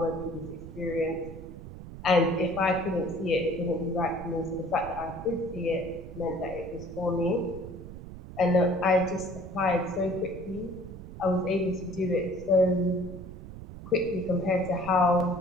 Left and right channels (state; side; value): noise; right; rumble, 13 dB below the sound